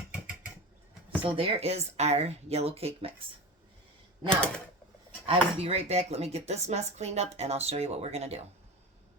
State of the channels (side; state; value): both; normal; correlation 0.28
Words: So there is our yellow cake mix. Now, I will be right back. Let me get this mess cleaned up, and I'll show you what we're going to do.